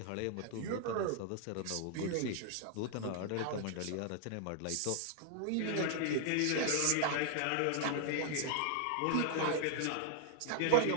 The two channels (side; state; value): both; different; correlation 0.00